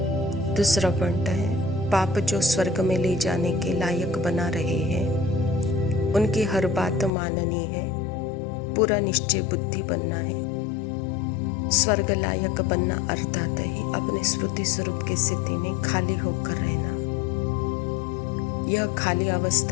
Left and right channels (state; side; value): drops out; right; at 7.1 s